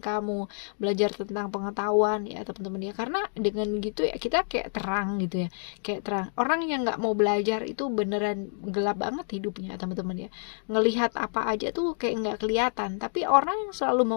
kamu, belajar tentang pengetahuan ya teman-teman ya. Karena dengan gitu ya kita kayak terang gitu ya, kayak terang. Orang yang nggak mau belajar itu beneran gelap banget hidupnya teman-teman ya, ngelihat apa aja tuh kayak nggak kelihatan. Tapi orang yang selalu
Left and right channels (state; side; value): silent; right; digital silence